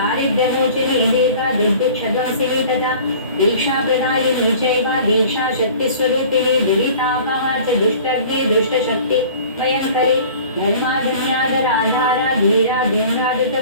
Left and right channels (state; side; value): inverted; both; correlation -0.45